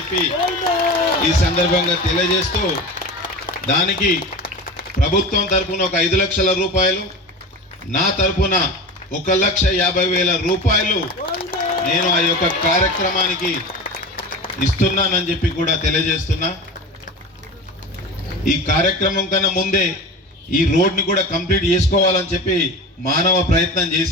ఈ సందర్భంగా తెలియజేస్తూ, దానికి ప్రభుత్వం తరపున ఒక 5 లక్షల రూపాయలు, నా తరపున 1,50,000 రూపాయలు నేను ఆ యొక్క కార్యక్రమానికి ఇస్తున్నానని చెప్పి కూడా తెలియజేస్తున్నా. ఈ కార్యక్రమం కన్నా ముందే ఈ రోడ్ని కూడా కంప్లీట్ చేసుకోవాలని చెప్పి మానవ ప్రయత్నం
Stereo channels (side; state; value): both; normal; correlation 0.31